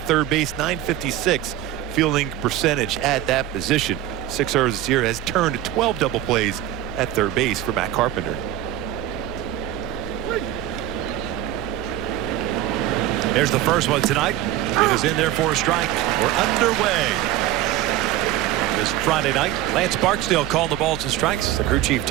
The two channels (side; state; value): left; quieter; 12.8 dB